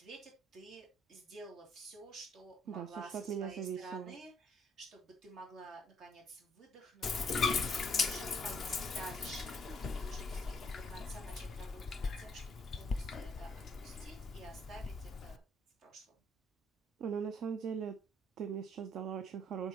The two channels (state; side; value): normal; both; correlation 0.69